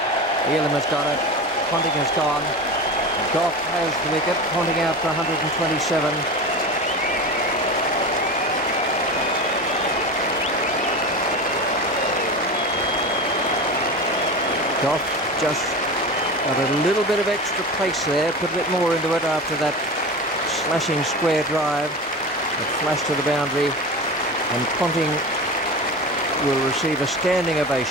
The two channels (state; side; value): normal; both; correlation 0.28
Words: Elam has got it. Ponting has gone. Goff has the wicket. Ponting out for 127. Goff just got a little bit of extra pace there, put a bit more into it after that slashing square drive, a flash to the boundary, and Ponting will receive a standing